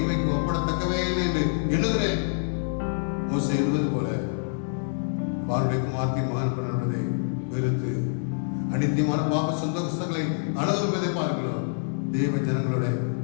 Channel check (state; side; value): silent; right; digital silence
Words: ஒப்படத்தக்கவே இல்லை என்று எழுதுகிறேன். மோசே எழுதுவது போல பாருடைய குமார்த்தி மகன் பண்ணுவதை வெறுத்து அனித்தியமான பாவ சந்தோஷங்களை அனுபவிப்பதை பார்க்கிறோம். தேவ ஜனங்களோட